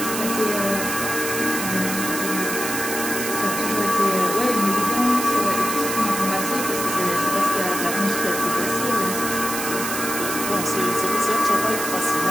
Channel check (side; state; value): right; noise; hiss, 4 dB below the sound